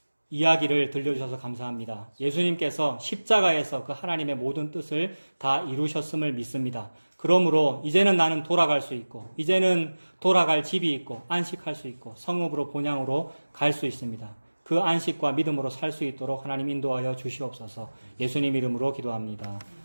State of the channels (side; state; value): both; inverted; correlation -1.00